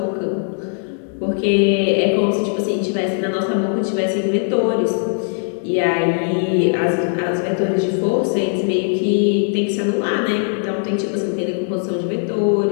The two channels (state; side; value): silent; right; 60 dB below the other